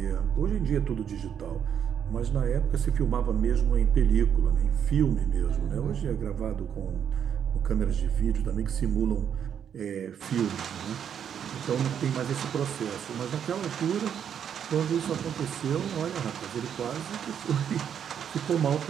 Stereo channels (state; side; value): quieter; left; 8.5 dB